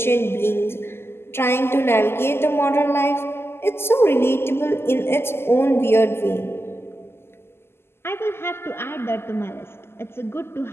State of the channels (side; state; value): right; late; 0.12 ms